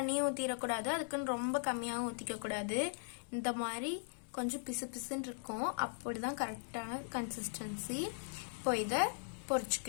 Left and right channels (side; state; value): right; silent; digital silence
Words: ஊற்றிடக்கூடாது, அதுக்குன்னு ரொம்ப கம்மியாகவும் ஊற்றிக்க கூடாது. இந்த மாதிரி கொஞ்சம் பிசு பிசுன்னு இருக்கும், அப்படிதான் கரெக்டான கன்சிஸ்டன்சி. இப்போ இதை